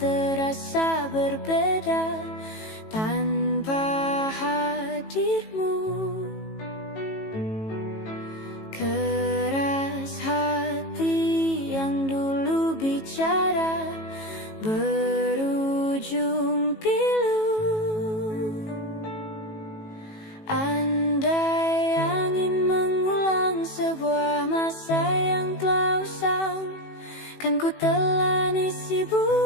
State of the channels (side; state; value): right; late; 18 ms